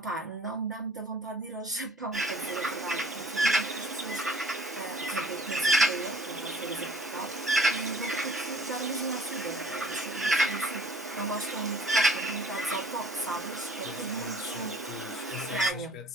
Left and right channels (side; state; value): both; normal; correlation 0.52